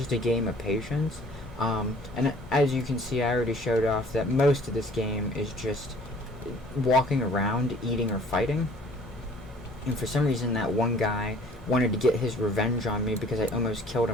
a game of patience. And as you can see, I already showed off that most of this game is just walking around, eating, or fighting. And for some reason, that one guy wanted to get his revenge on me because I almost killed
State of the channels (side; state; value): both; normal; correlation 0.53